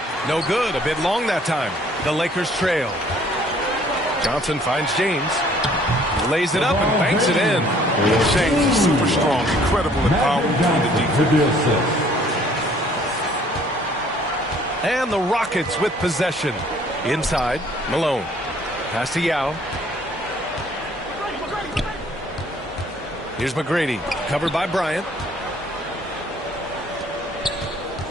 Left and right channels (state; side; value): normal; both; correlation 0.58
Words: No good. A bit long that time. The Lakers trail. Johnson finds James. Lays it up and banks it in. James is super strong, incredible and powerful in the defense. And the Rockets with possession. Inside, Malone. Pass to Yao. Here's McGrady, covered by Bryant.